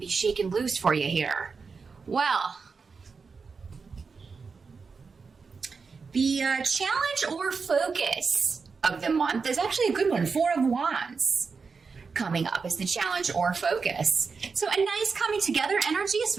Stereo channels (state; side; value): quieter; left; 5.0 dB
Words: shaken loose for you here? Well, the challenge or focus of the month is actually a good one. 4 of Wands coming up is the challenge or focus. So a nice coming together energy,